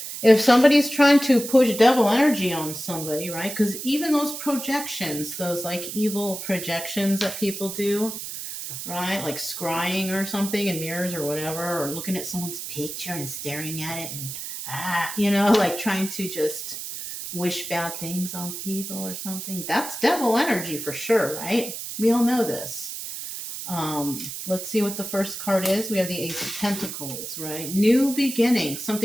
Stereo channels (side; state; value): right; noise; hiss, 8 dB below the sound